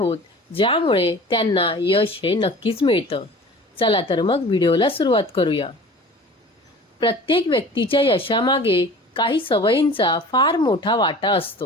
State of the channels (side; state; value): both; normal; correlation 0.42